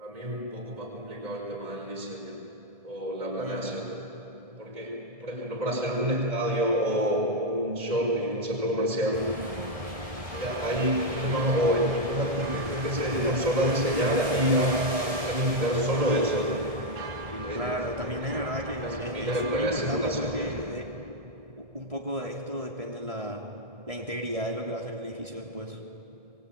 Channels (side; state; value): left; late; 1.7 ms